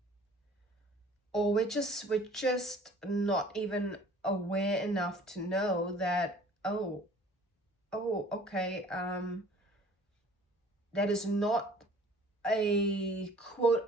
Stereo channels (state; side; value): normal; both; correlation 0.51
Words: or we're just not even aware enough to know that, oh, okay, that is not a quote